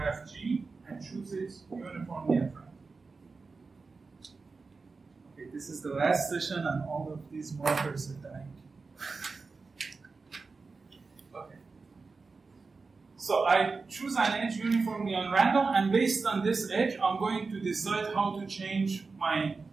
G and choose it uniformly at random. Okay, this is the last session and all of these markers are dying. Okay. So I choose an edge uniformly on random, and based on this edge, I'm going to decide how to change my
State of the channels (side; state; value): left; quieter; 4.3 dB